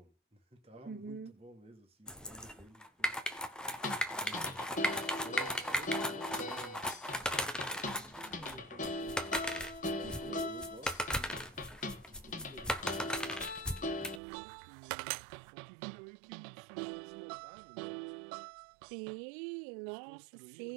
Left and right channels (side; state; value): left; drops out; at 14.2 s